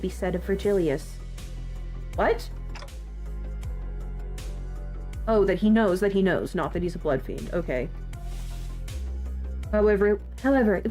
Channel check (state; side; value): identical; both; correlation 1.00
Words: be said of Virgilius. What? Oh, that he knows, not that he's a bloodfiend. Okay. However, it